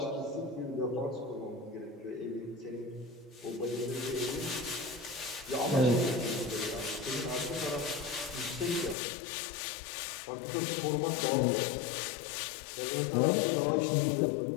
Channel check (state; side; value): drops out; right; at 9.0 s